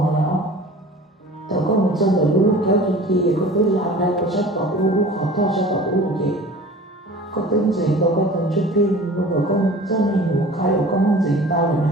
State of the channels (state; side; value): normal; both; correlation 0.42